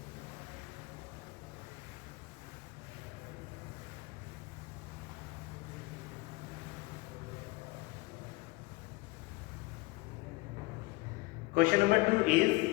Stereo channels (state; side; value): quieter; right; 22.4 dB